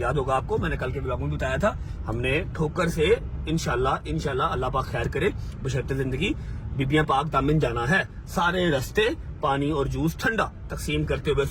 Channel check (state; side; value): identical; both; correlation 1.00